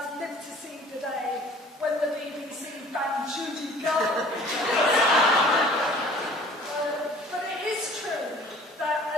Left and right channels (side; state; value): both; normal; correlation 0.50